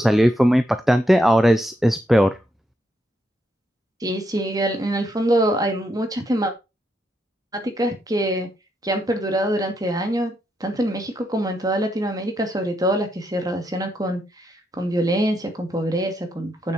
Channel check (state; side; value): normal; both; correlation 0.80